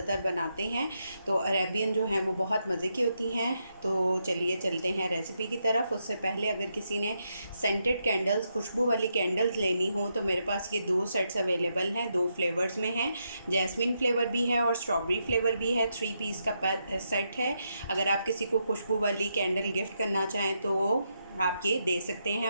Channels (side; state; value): both; inverted; correlation -0.81